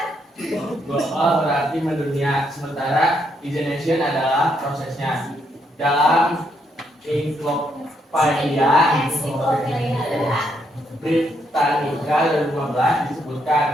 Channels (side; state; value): both; normal; correlation 0.75